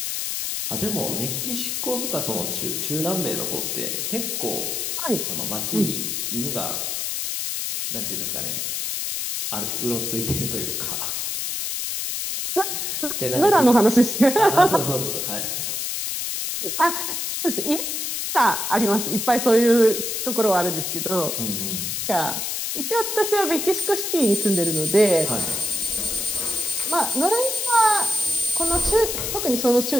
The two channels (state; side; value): noise; left; hiss, 2 dB below the sound